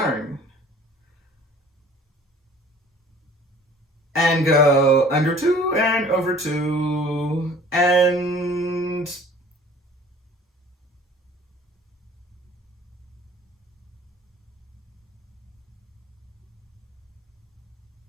And go under 2 and over 2 and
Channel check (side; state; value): both; normal; correlation 0.50